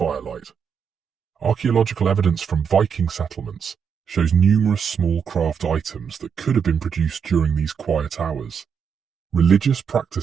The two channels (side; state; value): left; quieter; 6.9 dB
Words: Archaeological evidence from Viking settlements shows numerous small craft items that could have been produced during these quiet hours. Religious